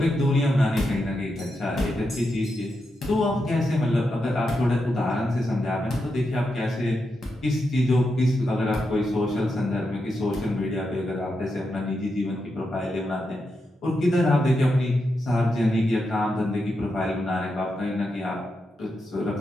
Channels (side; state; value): both; normal; correlation 0.86